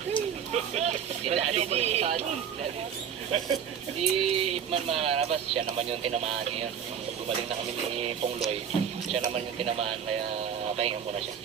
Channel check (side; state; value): left; quieter; 8.1 dB